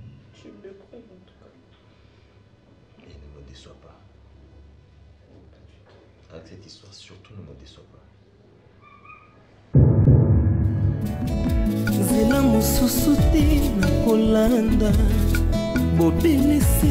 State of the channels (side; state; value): both; identical; correlation 1.00